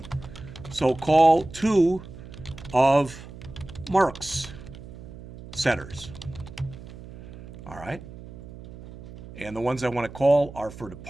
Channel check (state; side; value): noise; right; hum, 15 dB below the sound